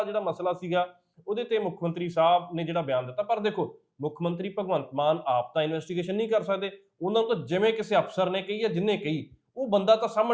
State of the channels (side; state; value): both; identical; correlation 1.00